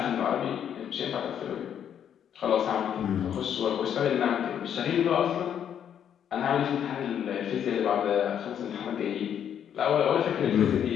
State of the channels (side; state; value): right; quieter; 9.1 dB